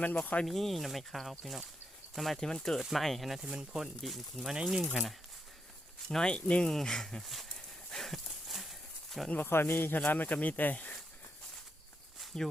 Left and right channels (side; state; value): both; normal; correlation 0.82